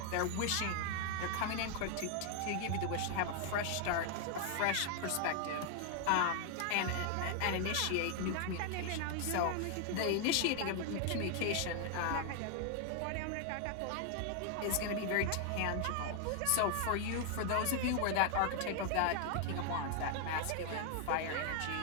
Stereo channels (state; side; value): different; both; correlation 0.00